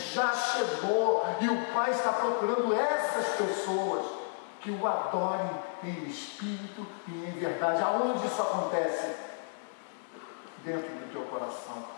chegou e o Pai está procurando essas pessoas que o adorem em espírito e em verdade. Aonde isso acontece? Dentro do teu coração,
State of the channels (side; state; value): right; silent; digital silence